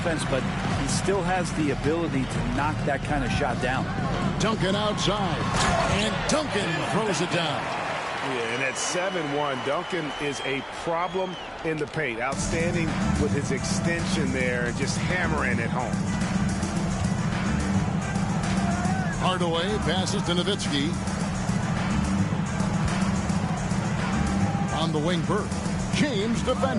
but he still has the ability to knock that kind of shot down. Duncan outside. And Duncan throws it down. Yeah, and at 7-1, Duncan is a problem in the paint. Outstanding with his extension there, just hammering it home. Hardaway passes to Nowitzki. On the wing, Bird. James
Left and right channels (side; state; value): both; identical; correlation 1.00